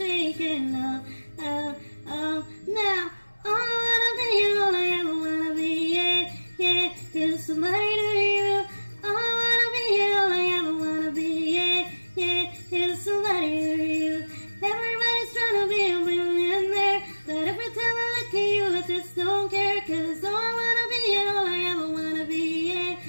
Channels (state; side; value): inverted; both; correlation -1.00